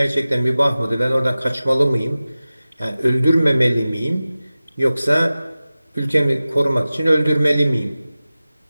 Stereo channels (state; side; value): inverted; both; correlation -0.96